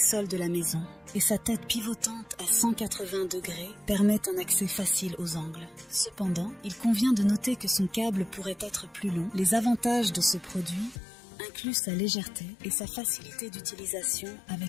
de la maison, et sa tête pivotante à 180 degrés permet un accès facile aux angles. Cependant, il convient de noter que son câble pourrait être plus long. Les avantages de ce produit inclut sa légèreté et sa facilité d'utilisation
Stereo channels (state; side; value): drops out; right; at 11.0 s